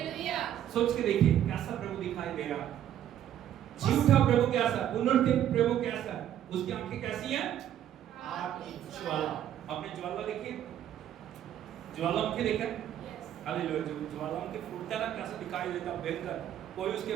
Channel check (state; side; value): quieter; left; 10.9 dB